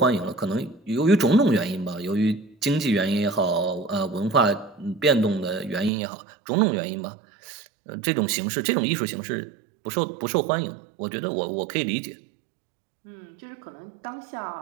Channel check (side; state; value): left; drops out; at 5.9 s